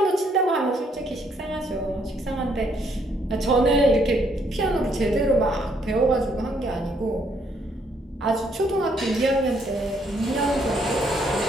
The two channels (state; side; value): normal; both; correlation 0.70